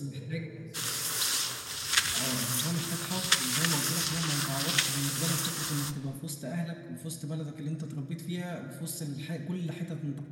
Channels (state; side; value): identical; both; correlation 1.00